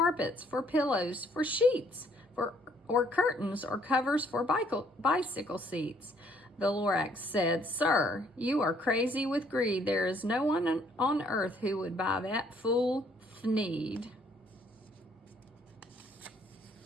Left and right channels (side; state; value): both; normal; correlation 0.65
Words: for pillows, for sheets, or curtains, or covers for bicycle seats. The Lorax said, Sir, you are crazy with greed. There is no one on earth who would buy that fool thneed.